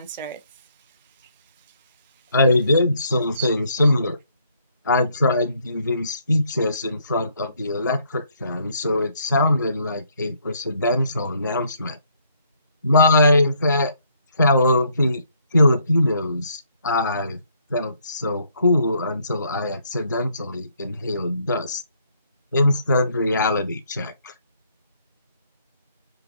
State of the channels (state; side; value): inverted; both; correlation -0.69